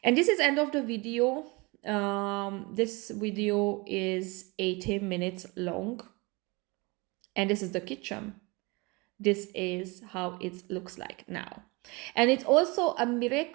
And this is end of the video. This video is 18 minutes long, and this is the kitchen. This is how it looks like now. And it's also a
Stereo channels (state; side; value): quieter; left; 26.6 dB